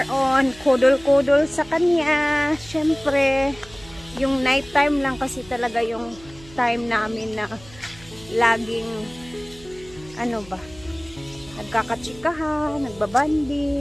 on kudol-kudol sa kanya. Syempre, yung night time lang kasi talaga yung time namin na laging nagkakatsikahan,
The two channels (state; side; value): noise; right; hum, 21 dB below the sound